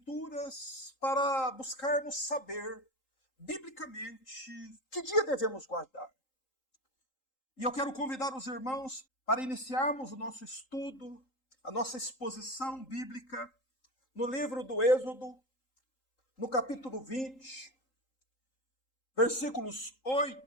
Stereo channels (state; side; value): late; right; 3.8 ms